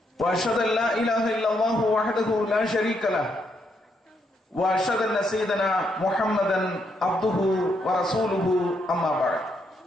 wa ashhadu an la ilaha illallah wahdahu la sharika lahu وأشهد أن سيدنا محمدا عبده ورسوله أما بعد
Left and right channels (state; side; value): normal; both; correlation 0.77